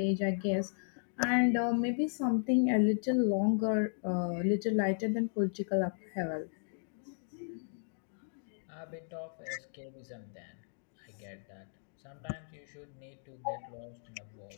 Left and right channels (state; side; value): silent; right; digital silence